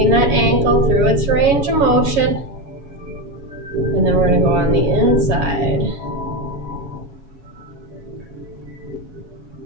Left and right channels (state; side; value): late; left; 7.2 ms